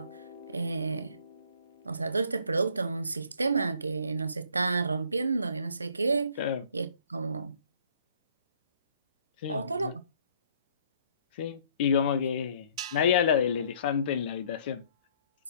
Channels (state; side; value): inverted; both; correlation -0.61